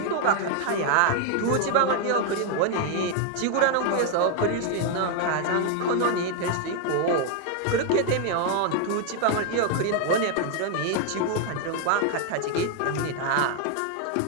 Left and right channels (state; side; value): different; both; correlation 0.00